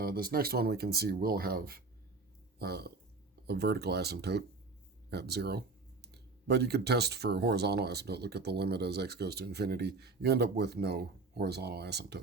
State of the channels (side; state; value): left; quieter; 4.0 dB